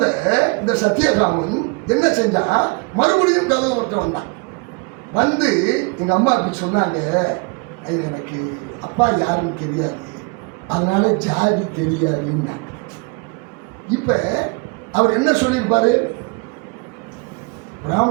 இந்த சத்தியகாமன் என்ன செஞ்சா, மறுபடியும் கதவர்கிட்ட வந்தான். வந்து எங்க அம்மா அப்படி சொன்னாங்க, எனக்கு அப்பா யாருன்னு தெரியாது, அதனால ஜாதி தெரியாதுன்னா. இப்ப அவர் என்ன சொல்லியிருப்பாரு?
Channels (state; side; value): quieter; left; 30.2 dB